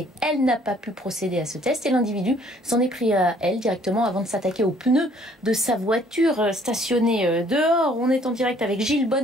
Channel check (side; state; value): both; normal; correlation 0.60